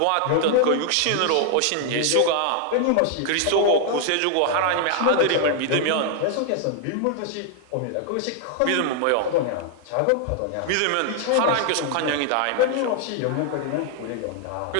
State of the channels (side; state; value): both; different; correlation 0.00